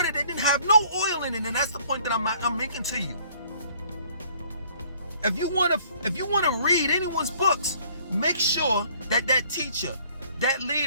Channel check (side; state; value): both; inverted; correlation -0.59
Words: that didn't have no oil in it, and that's the point that I'm making to you. If you want to read anyone's books, make sure that that teacher, that